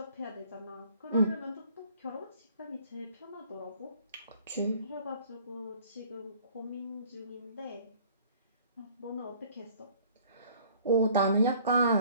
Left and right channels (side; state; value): both; inverted; correlation -0.54